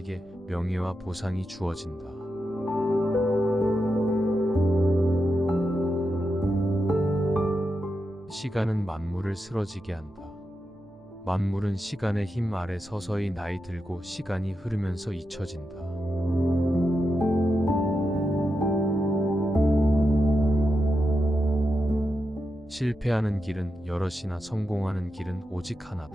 명예와 보상이 주어진다. 시간은 만물을 쓰러지게 한다. 만물은 시간의 힘 아래 서서히 나이 들고 시간이 흐르면서 잊혀진다. 실패하는 길은 여럿이나 성공하는 길은 오직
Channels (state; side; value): noise; right; hum, 28 dB below the sound